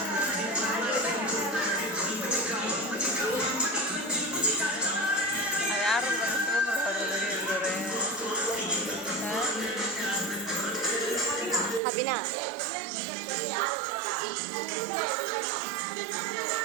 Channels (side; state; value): left; drops out; at 11.8 s